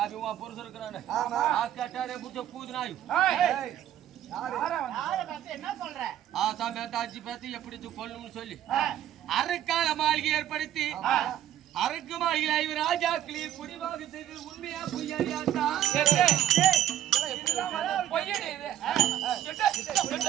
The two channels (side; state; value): left; quieter; 11.7 dB